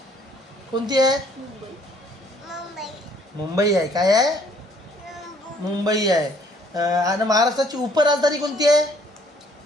कोणती आहे? मुंबई आहे. काय आहे? मुंबई आहे. आणि महाराष्ट्राची उपराजधानी कोणती आहे?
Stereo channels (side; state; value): both; normal; correlation 0.61